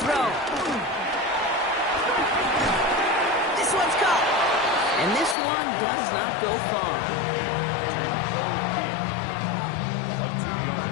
throw. This one's caught. And this one does not go far.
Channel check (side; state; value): right; drops out; at 5.4 s